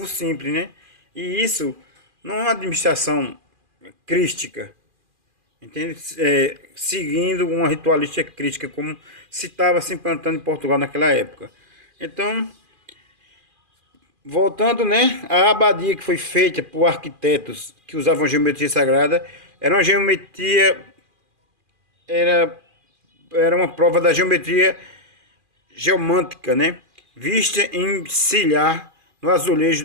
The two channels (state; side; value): late; left; 2.4 ms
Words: simples, né? E isso não é uma administração crística, entende? Seguindo uma ritualística crítica, como se estava se implantando em Portugal naquela época. Então, voltando, né, a abadia que foi feita por arquitetos que usavam geometria sagrada, era uma geometria, era uma prova da geometria geomântica, né? Vista em silhar no